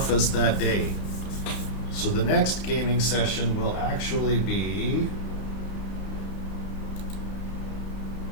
that day. So the next gaming session will actually be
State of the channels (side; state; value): right; late; 32 ms